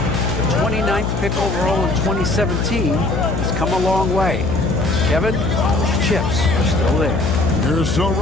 29th pick overall in 2017. He's come a long way. Kevin, those chips are still there. You're so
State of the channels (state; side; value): noise; left; hum, 2 dB below the sound